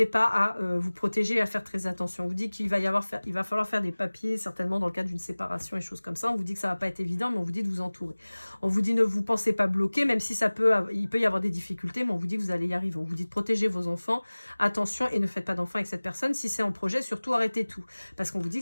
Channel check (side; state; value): both; inverted; correlation -1.00